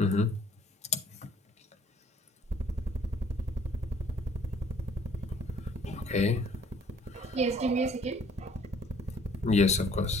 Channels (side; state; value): both; normal; correlation 0.59